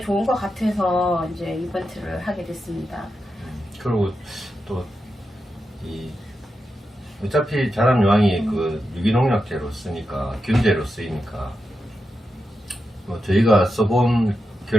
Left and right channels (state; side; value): normal; both; correlation 0.88